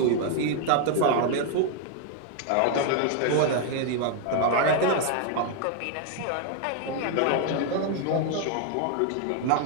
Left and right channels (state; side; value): different; both; correlation 0.00